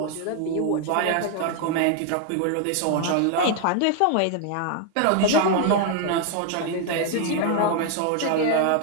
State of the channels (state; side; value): different; both; correlation 0.00